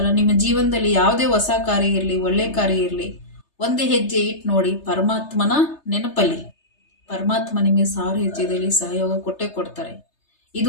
ನಿಮ್ಮ ಜೀವನದಲ್ಲಿ ಯಾವುದೇ ಹೊಸ ಕಾರ್ಯ ಇರಲಿ, ಒಳ್ಳೆ ಕಾರ್ಯ ಇರಲಿ, ಒಂದೇ ಹೆಜ್ಜೆ ಇಟ್ಟು ನೋಡಿ, ಪರಮಾತ್ಮನ ನೆನಪಲ್ಲಿ. ಪರಮಾತ್ಮ ನಿಮಗೆ 1000 ಹೆಜ್ಜೆದಲ್ಲಿ ಸಹಯೋಗ ಕೊಟ್ಟೇ ಕೊಡ್ತಾರೆ.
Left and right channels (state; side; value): late; right; 3.3 ms